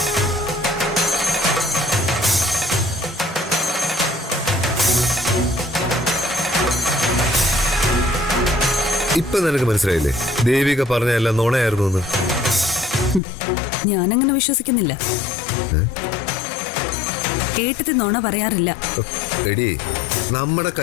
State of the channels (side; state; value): right; drops out; at 13.2 s